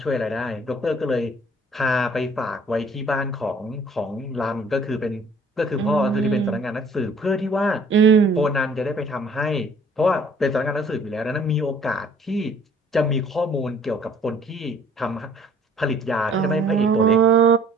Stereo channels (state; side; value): normal; both; correlation 0.55